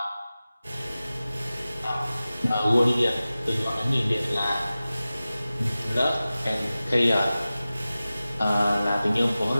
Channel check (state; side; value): inverted; both; correlation -0.96